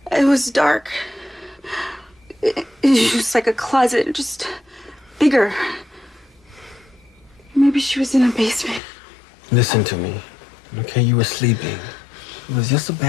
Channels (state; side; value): drops out; right; at 8.8 s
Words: It was dark. It was like a closet, just bigger. Maybe she was in a basement. Listen to me, okay? You were sleeping. It was just a